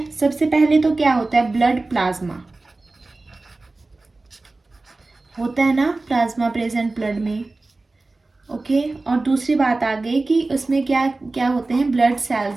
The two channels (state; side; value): quieter; left; 3.3 dB